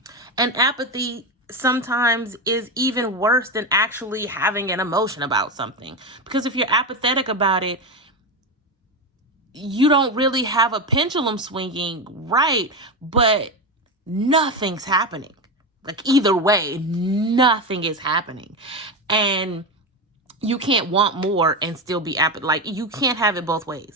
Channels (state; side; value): normal; both; correlation 0.16